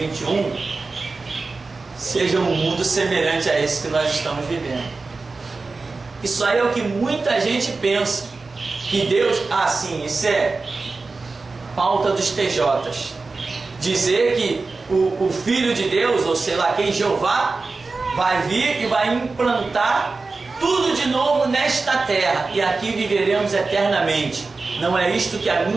sejam um mundo semelhante a esse que nós estamos vivendo. Isso aí é o que muita gente pensa, que Deus, sim, isso é pauta dos TJs, dizer que o Filho de Deus, ou sei lá quem, Jeová, vai vir e vai implantar tudo de novo nesta terra, e aqui viveremos eternamente. Não é isto que a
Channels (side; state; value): left; quieter; 3.9 dB